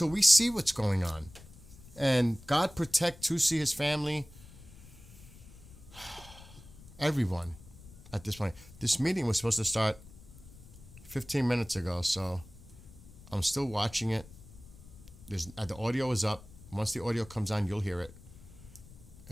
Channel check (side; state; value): left; noise; rumble, 19 dB below the sound